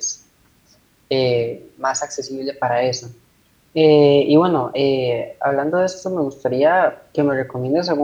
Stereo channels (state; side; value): identical; both; correlation 1.00